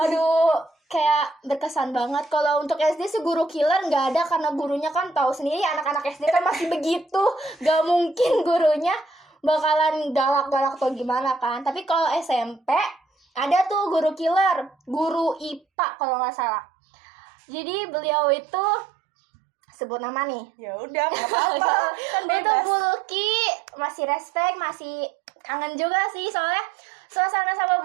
aduh kayak berkesan banget. Kalau untuk SD sih guru killer nggak ada, karena gurunya kan tahu sendiri anak-anak SD kan masih begitu, gak mungkin gurunya bakalan galak-galak atau gimana kan. Tapi kalau SMP ada tuh guru killer, guru IPA kalau nggak salah. Jadi beliau itu, sebut nama nih, Ya udah, nggak apa-apa, kan itu bebas. Bu Luki, masih respect, masih kangen juga sih soalnya suasana sama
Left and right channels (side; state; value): left; drops out; at 15.6 s